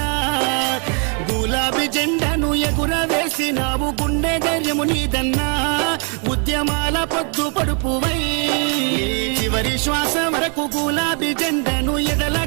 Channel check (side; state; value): left; quieter; 38.0 dB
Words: గులాబీ జెండాను ఎగురవేసినావు గుండె ధైర్యము నీదన్నా ఉద్యమాల పొద్దు పడుపువై నీ చివరి శ్వాస వరకు గులాబీ జెండాను ఎడల